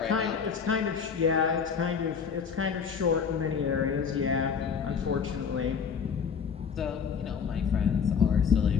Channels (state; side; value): quieter; right; 6.5 dB